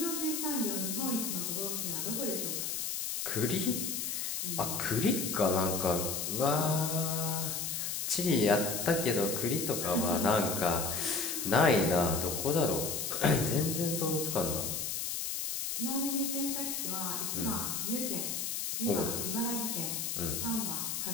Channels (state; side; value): noise; left; hiss, 2 dB below the sound